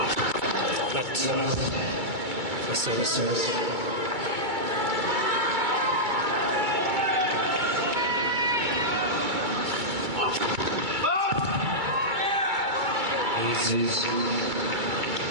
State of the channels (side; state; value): left; late; 2.3 ms